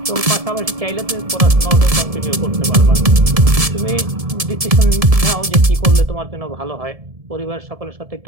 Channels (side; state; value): left; late; 1.7 ms